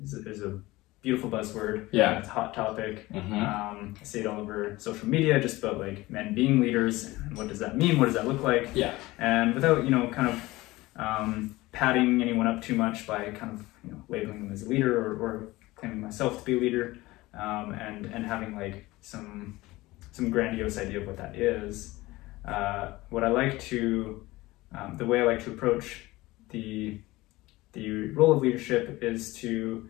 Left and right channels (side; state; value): right; quieter; 19.5 dB